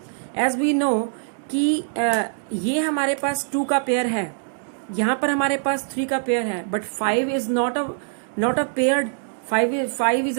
एज वी नो कि ये हमारे पास 2 का पेयर है, यहाँ पर हमारे पास 3 का पेयर है, but 5 is not a paired, 5 is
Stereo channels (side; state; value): left; silent; 63 dB below the other